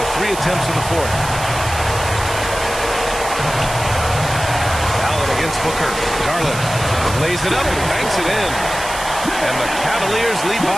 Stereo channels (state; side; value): noise; right; hiss, 9 dB below the sound